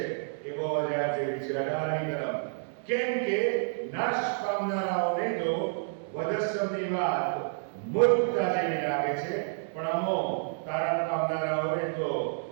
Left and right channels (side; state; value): left; silent; 58 dB below the other